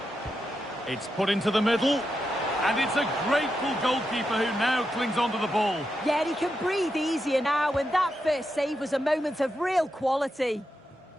It's put into the middle. And it's a grateful goalkeeper who now clings onto the ball. Yeah, he can breathe easier now, and that first save was a moment of real quality.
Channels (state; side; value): normal; both; correlation 0.86